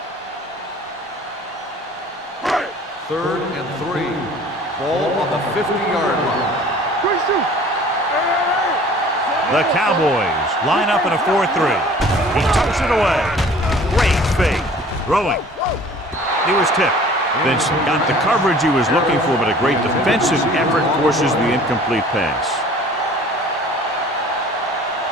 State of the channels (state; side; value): normal; both; correlation 0.49